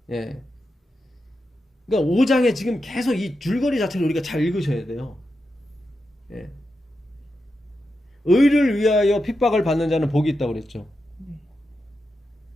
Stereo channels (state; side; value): normal; both; correlation 0.88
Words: 예. 그러니까 5장에 지금 계속 이 줄거리 자체를 우리가 잘 읽으셔야 돼요. 예. 의를 위하여 핍박을 받는 자는 복이 있다고 그랬죠.